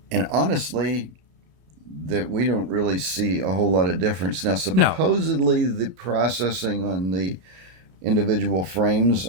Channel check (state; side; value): late; left; 32 ms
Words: And honestly, that we don't really see a whole lot of difference. Now, supposedly the processing on the individual frames